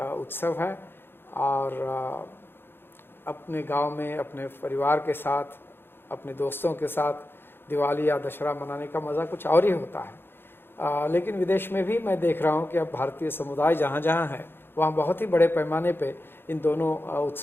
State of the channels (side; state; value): right; late; 0.10 ms